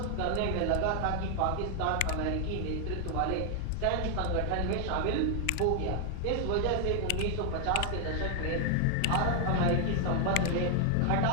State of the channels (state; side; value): different; both; correlation 0.00